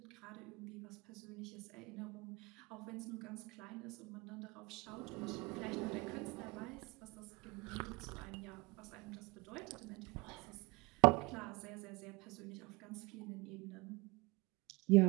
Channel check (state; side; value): quieter; left; 25.1 dB